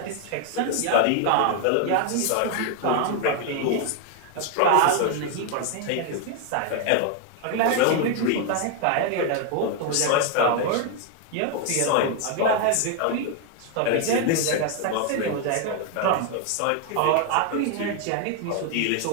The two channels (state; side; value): different; both; correlation 0.01